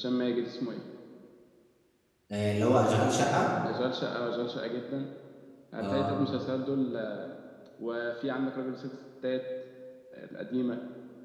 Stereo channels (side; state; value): both; identical; correlation 1.00